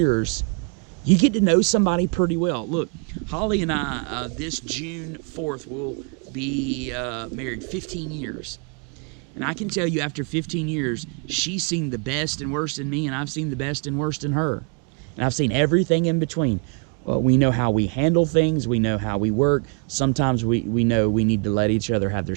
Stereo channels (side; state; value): left; quieter; 38.6 dB